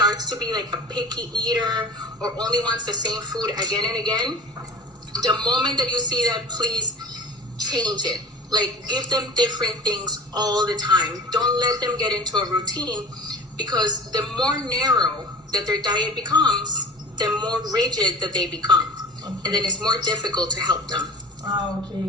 to be like a picky eater or only wants the same food again and again, the moment that you see that, please change it. Like, give them different things all the time. Don't let them get into a routine, because the more narrow that their diet becomes, the more rigid that they become. Okay. And then it's more difficult to help them.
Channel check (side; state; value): both; normal; correlation 0.37